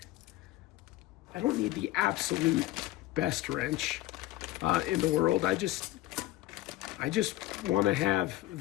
the absolute best wrench in the world. I just want to have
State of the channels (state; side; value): quieter; right; 16.7 dB